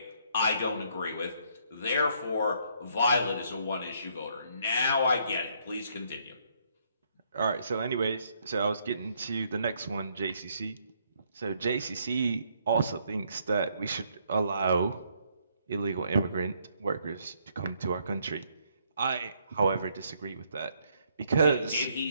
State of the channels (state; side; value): inverted; both; correlation -0.70